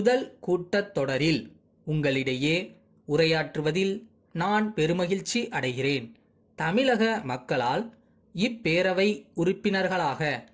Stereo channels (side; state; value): both; identical; correlation 1.00